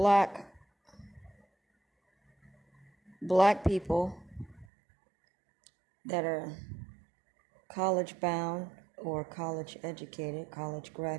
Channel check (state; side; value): drops out; left; at 4.7 s